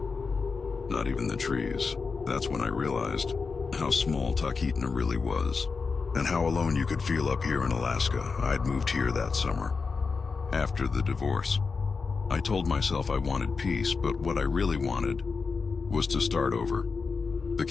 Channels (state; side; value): quieter; right; 4.8 dB